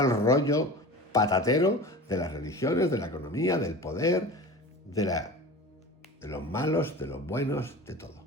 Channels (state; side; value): normal; both; correlation 0.34